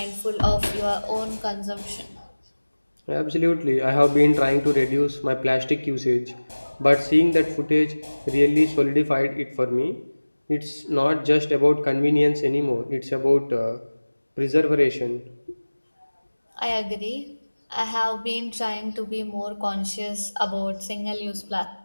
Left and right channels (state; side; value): inverted; both; correlation -1.00